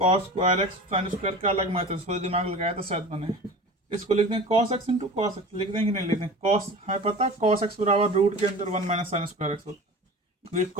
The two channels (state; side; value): normal; both; correlation 0.36